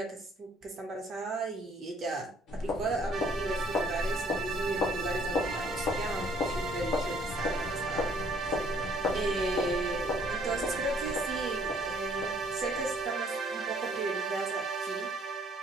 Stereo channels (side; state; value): both; normal; correlation 0.61